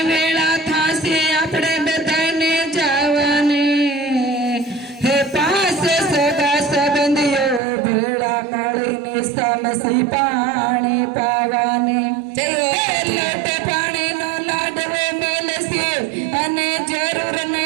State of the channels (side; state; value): left; drops out; at 7.6 s